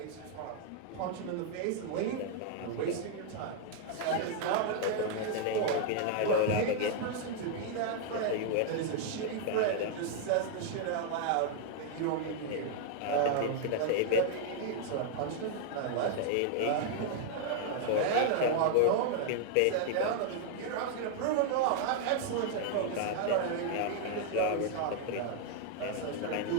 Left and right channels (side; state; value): both; different; correlation 0.00